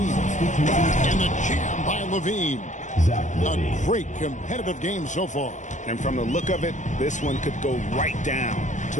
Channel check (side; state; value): right; late; 0.35 ms